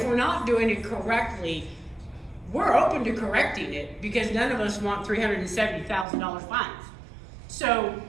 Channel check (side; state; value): left; drops out; at 6.1 s